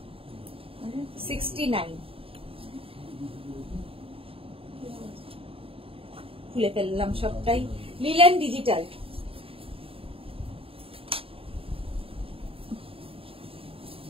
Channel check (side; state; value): left; late; 0.27 ms